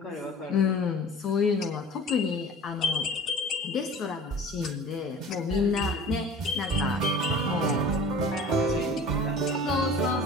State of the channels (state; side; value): normal; both; correlation 0.42